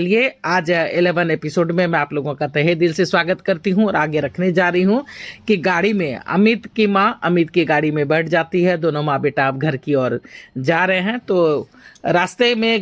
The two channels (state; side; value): identical; both; correlation 1.00